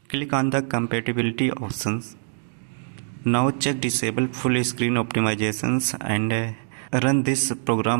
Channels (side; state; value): left; silent; digital silence